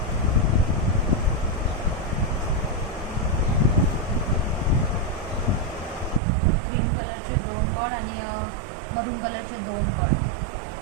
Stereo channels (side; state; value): left; drops out; at 6.2 s